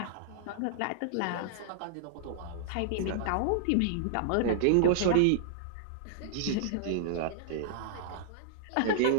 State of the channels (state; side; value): different; both; correlation -0.01